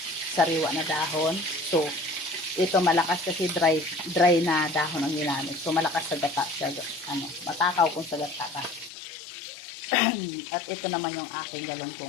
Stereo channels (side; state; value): right; drops out; at 8.9 s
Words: sariwa na dahon. So, ito malakas kasi dry na dahon ang ginamit. So, malakas sa gata siya. Matakaw kung sa gata ka. At ito naman yung aking